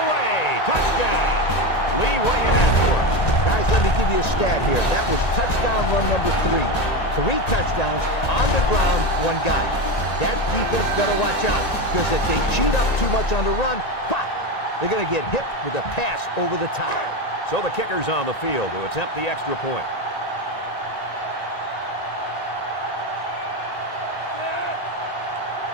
way. Touchdown. Lee, what do you have for us? Guys, let me give you a stat here. That was touchdown run number 3. 3 touchdowns on the ground, 1 guy. That defense better watch out, because if they cheat up too much on the run, pop, they're going to get hit with a pass over the top. So the kicker's on the field to attempt the extra point.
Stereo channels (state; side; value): late; right; 1.9 ms